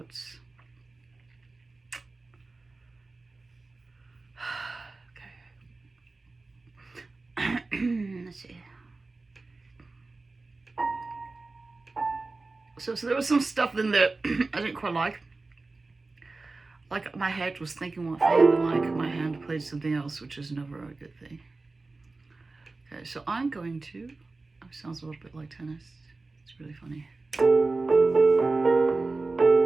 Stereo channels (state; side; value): quieter; left; 3.6 dB